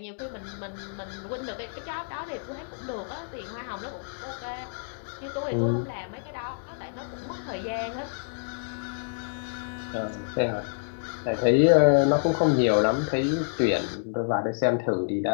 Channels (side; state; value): right; silent; digital silence